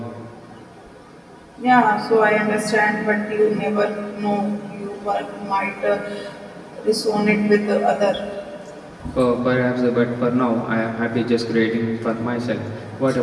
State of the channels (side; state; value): both; identical; correlation 1.00